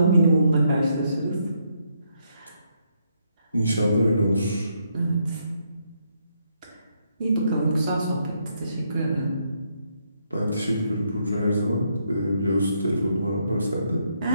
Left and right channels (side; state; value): both; inverted; correlation -0.76